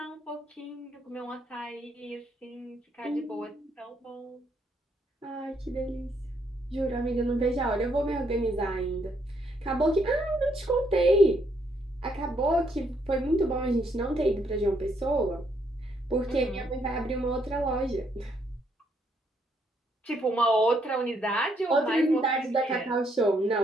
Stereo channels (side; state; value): both; normal; correlation 0.73